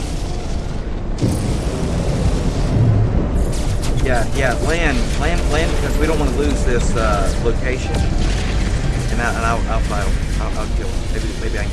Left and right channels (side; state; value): both; identical; correlation 1.00